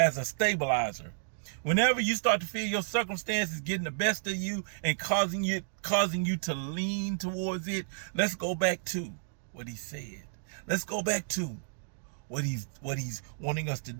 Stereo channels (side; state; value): left; silent; digital silence